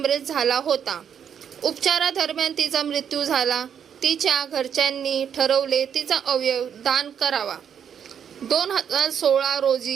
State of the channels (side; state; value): left; quieter; 8.2 dB